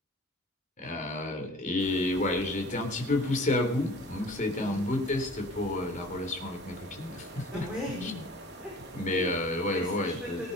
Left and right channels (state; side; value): normal; both; correlation 0.46